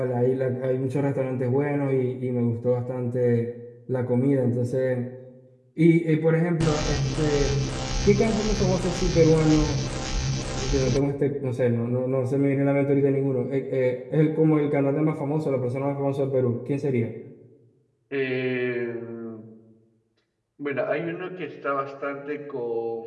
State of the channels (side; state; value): both; identical; correlation 1.00